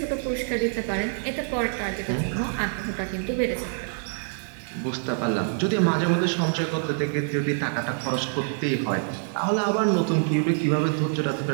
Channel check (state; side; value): silent; left; 61 dB below the other